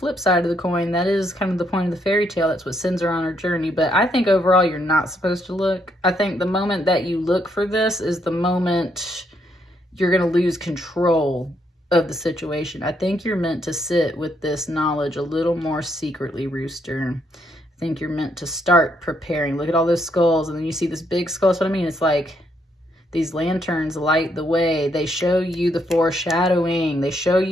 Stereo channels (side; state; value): both; normal; correlation 0.74